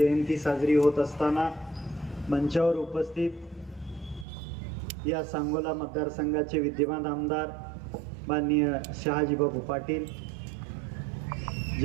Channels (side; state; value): left; drops out; at 4.2 s